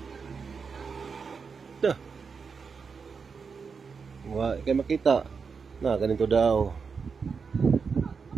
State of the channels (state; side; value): quieter; left; 5.5 dB